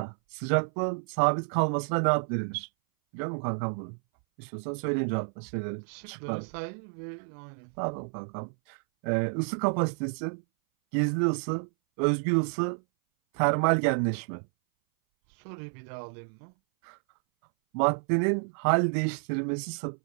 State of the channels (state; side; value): silent; left; 58 dB below the other